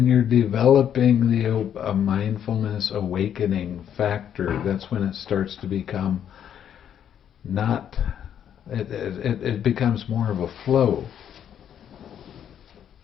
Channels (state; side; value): quieter; right; 9.3 dB